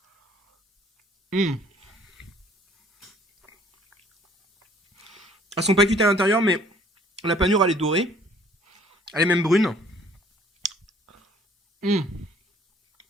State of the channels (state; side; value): normal; both; correlation 0.58